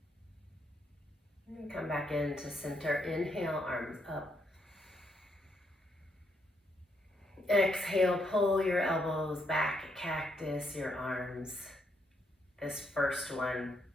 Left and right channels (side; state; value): both; normal; correlation 0.76